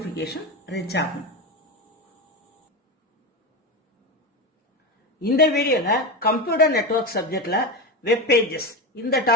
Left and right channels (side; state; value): both; normal; correlation 0.18